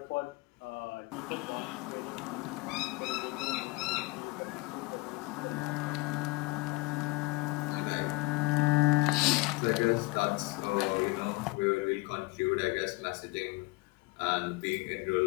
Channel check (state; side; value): quieter; right; 23.0 dB